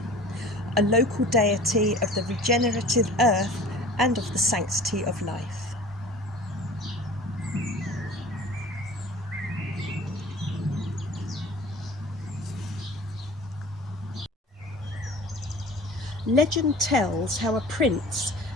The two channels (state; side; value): normal; both; correlation 0.43